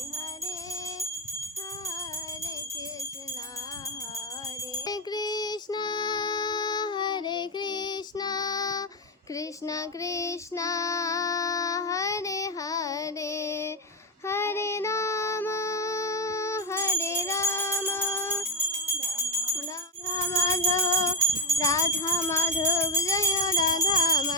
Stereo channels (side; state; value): both; normal; correlation 0.07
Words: হরে, হরে কৃষ্ণ হরে কৃষ্ণ, হরে কৃষ্ণ কৃষ্ণ কৃষ্ণ হরে হরে, হরে রাম হরে রাধা মাধব জয় রাধা